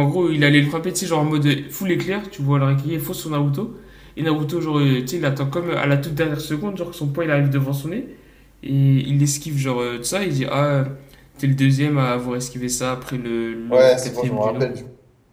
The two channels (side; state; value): both; identical; correlation 1.00